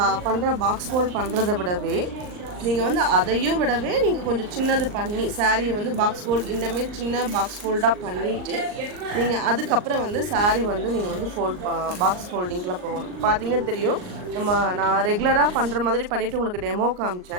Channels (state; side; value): late; left; 39 ms